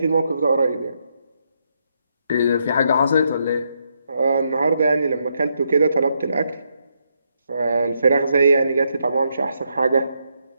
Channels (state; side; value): inverted; both; correlation -0.78